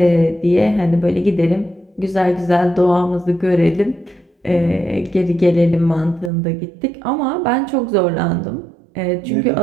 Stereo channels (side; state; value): left; drops out; at 6.3 s